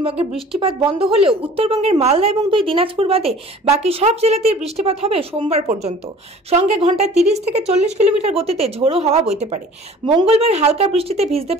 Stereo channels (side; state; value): both; normal; correlation 0.47